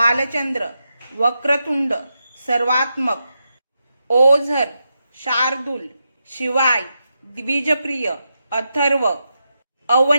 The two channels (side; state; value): both; inverted; correlation -0.86